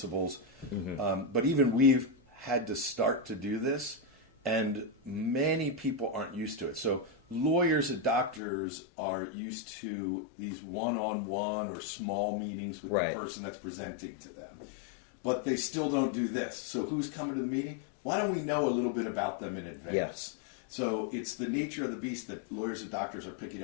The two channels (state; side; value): drops out; right; at 8.4 s